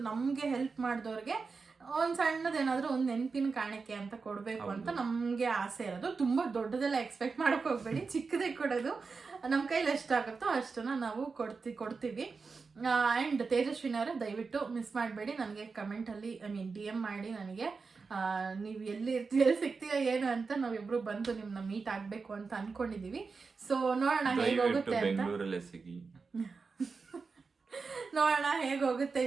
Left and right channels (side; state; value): left; quieter; 4.7 dB